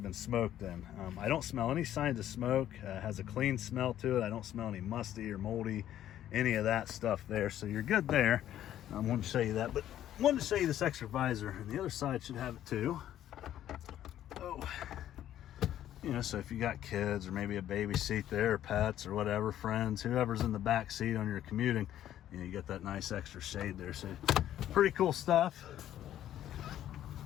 been smoked in? I don't smell any signs of smoke. Has a clean smell to it. I don't smell any musty or moldy, any of that stuff there. So you're good there. I wanted to show you that. But I wanted to show you this extra visor, and the other side should have it too. Oh. So if you got kids or maybe a baby seat there, or pets or whatever, friends, whoever's in the back seat on your commuting, you get that nice extra shade there. So pretty cool stuff.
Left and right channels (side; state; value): right; quieter; 11.8 dB